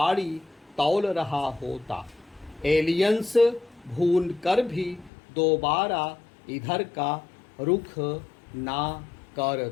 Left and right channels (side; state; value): right; drops out; at 5.1 s